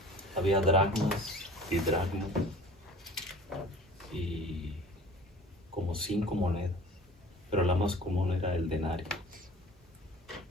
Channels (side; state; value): both; normal; correlation 0.45